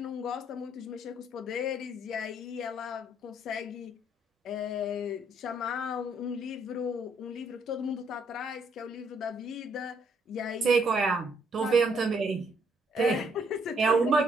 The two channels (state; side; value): normal; both; correlation 0.69